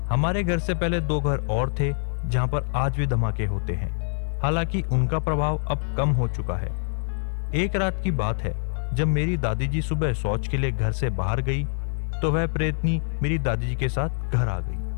हमारे घर से पहले 2 घर और थे जहां पर आज भी धमाके होते हैं, हालांकि उनका प्रभाव अब कम हो चुका है। एक रात की बात है, जब मेरी दादी जी सुबह शौच के लिए घर से बाहर गई तो वह प्रेतनी मेरी दादी जी के साथ घर आ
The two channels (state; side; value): silent; right; 57 dB below the other